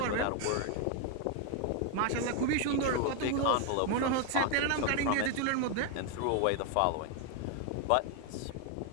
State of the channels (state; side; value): different; both; correlation 0.01